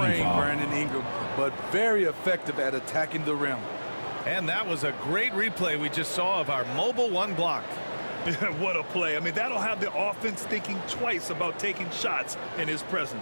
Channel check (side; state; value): both; inverted; correlation -1.00